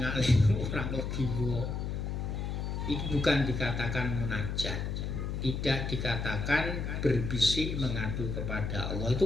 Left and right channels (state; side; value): noise; left; hum, 3 dB below the sound